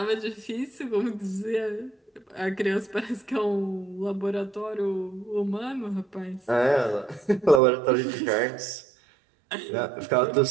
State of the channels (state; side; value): drops out; left; at 7.6 s